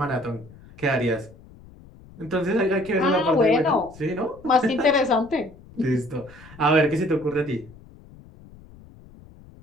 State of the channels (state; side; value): noise; left; rumble, 22 dB below the sound